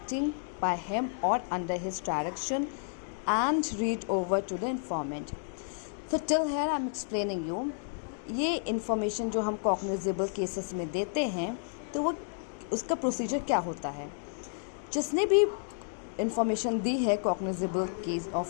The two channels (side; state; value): right; silent; digital silence